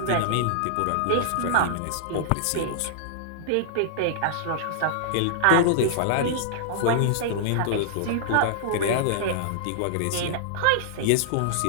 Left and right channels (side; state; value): both; different; correlation -0.01